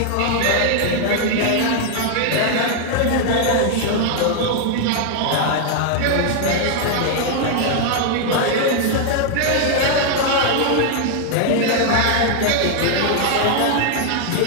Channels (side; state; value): both; different; correlation 0.00